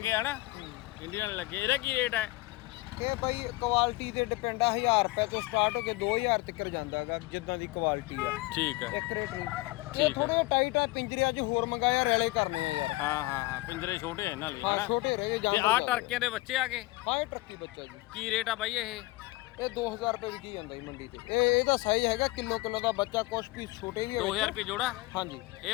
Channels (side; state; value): right; quieter; 21.4 dB